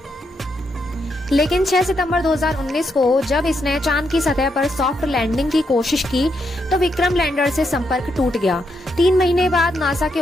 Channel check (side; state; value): both; normal; correlation 0.80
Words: लेकिन 6 सितंबर 2019 को जब इसने चांद की सतह पर सॉफ्ट लैंडिंग की कोशिश की तो विक्रम लैंडर से संपर्क टूट गया। 3 महीने बाद नासा के